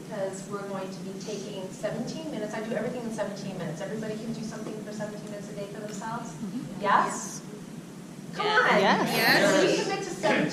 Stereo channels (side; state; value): both; identical; correlation 1.00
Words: we're going to be taking 17 minutes. I do everything in 17 minutes. Everybody can do something for 17 minutes a day for themselves? Yes? Come on. Yes. So you commit to